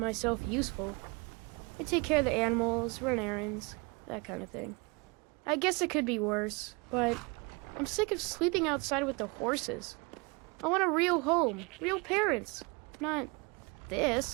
useful. I take care of the animals, run errands, that kind of thing. I guess it could be worse, but I'm sick of sleeping outside with the horses. I want a real home, real parents, not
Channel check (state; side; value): quieter; left; 28.8 dB